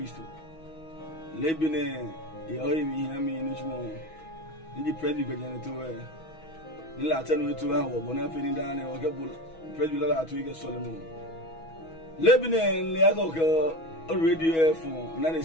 lebine ye oyi mi ha mi ni chumo ndi predi gbejan to we ni la tanu to ha wo bona fe ni da na o ke bul predi la to ike Solomon lebine le ago ko radio FM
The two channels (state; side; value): late; right; 6.2 ms